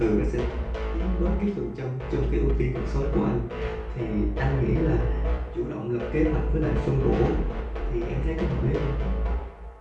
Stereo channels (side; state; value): both; identical; correlation 1.00